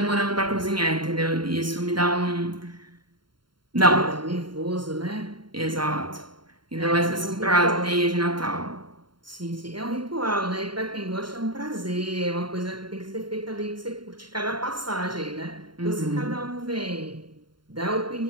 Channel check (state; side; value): late; left; 0.72 ms